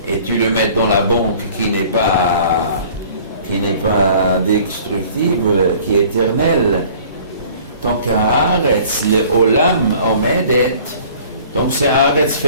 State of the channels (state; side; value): inverted; both; correlation -0.51